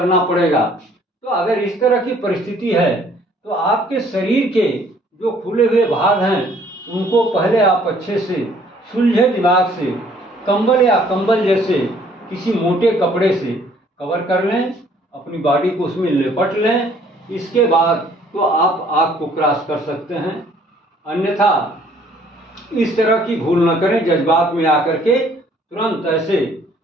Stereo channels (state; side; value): normal; both; correlation 0.60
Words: पड़ेगा। तो अगर इस तरह की परिस्थिति है तो आपके शरीर के जो खुले हुए भाग हैं उनको पहले आप अच्छे से सुलझे दिमाग से कंबल या कंबल जैसे किसी मोटे कपड़े से कवर कर लें, अपनी बॉडी को उसमें लिपट लें। इसके बाद तो आप आग को क्रॉस कर सकते हैं। अन्यथा इस तरह की भूल न करें, जज्बात में आकर के तुरंत ऐसे